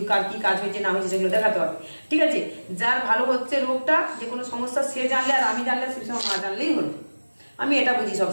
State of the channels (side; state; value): both; inverted; correlation -1.00